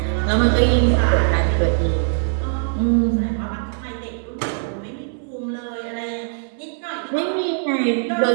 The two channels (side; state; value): left; silent; 65 dB below the other